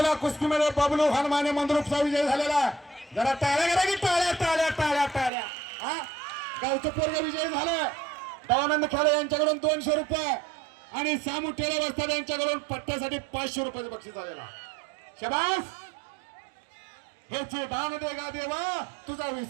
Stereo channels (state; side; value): drops out; left; at 5.3 s